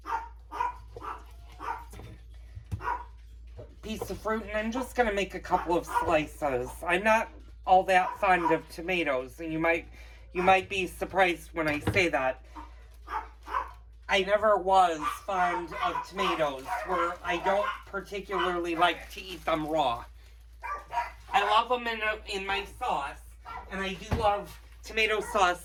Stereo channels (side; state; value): both; identical; correlation 1.00